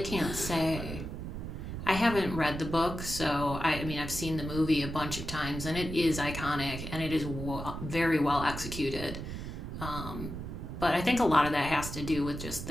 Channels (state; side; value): noise; right; rumble, 7 dB below the sound